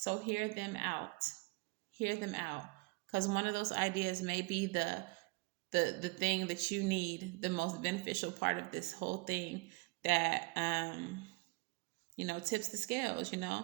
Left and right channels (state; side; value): quieter; left; 26.6 dB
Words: hear them out. Hear them out. Because one of those ideas may be the thing that you need, the most beneficial part of this whole thing that tips the scales,